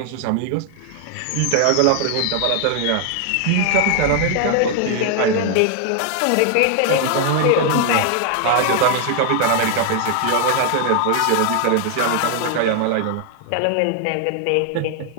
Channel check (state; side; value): different; both; correlation 0.00